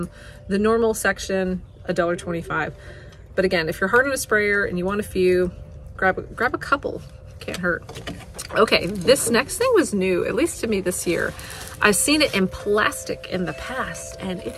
the normal section, $1.25. But again, if you're hard on a sprayer and you want a few, grab a couple. Can't hurt. Okay, this next thing was new, at least to me this year. I've seen it in plastic in the past, and it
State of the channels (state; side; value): identical; both; correlation 1.00